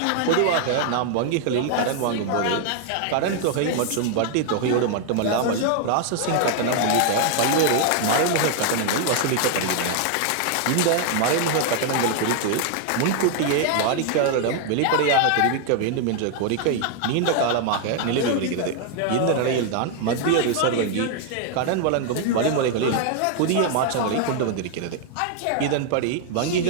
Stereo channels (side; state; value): both; different; correlation 0.00